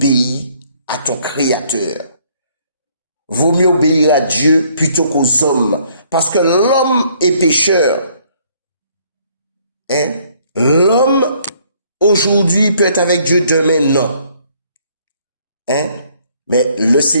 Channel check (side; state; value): both; inverted; correlation -0.64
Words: à ton Créateur. Vaut mieux obéir à Dieu plutôt qu'aux hommes, parce que l'homme est pécheur. Hein? L'homme, aujourd'hui, peut être avec Dieu, demain, non. Hein? Mais le